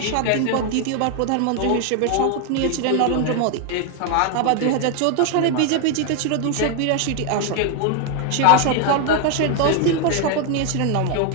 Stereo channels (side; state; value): both; different; correlation 0.01